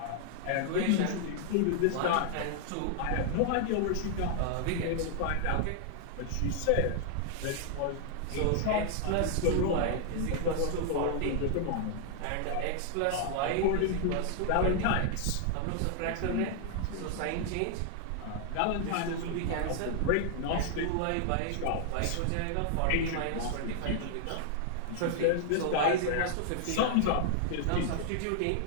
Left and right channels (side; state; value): both; different; correlation 0.00